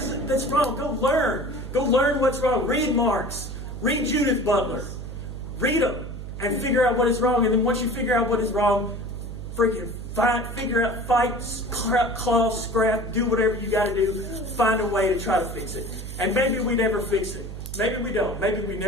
that's wrong. Go learn. Go learn what's wrong. Read Marx. Read Judith Butler. Read them and figure out what is wrong. And then once you figure out what is wrong, freaking figure out, fight, claw, scrap, do whatever you got to do. Find a way to try to fix it. And maybe we never fix it. Maybe we don't. Maybe we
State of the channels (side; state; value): right; noise; hum, 8 dB below the sound